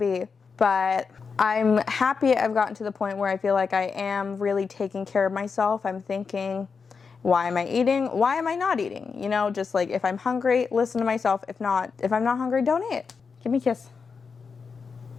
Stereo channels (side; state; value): right; quieter; 5.4 dB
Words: But I'm happy I've gotten to the point where I feel like I am really taking care of myself. I'm thinking, why am I eating? Why am I not eating? You know, just like if I'm hungry, listen to myself. If I'm not hungry, don't eat. Give me a kiss.